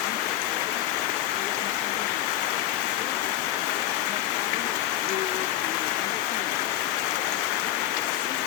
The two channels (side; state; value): right; quieter; 13.1 dB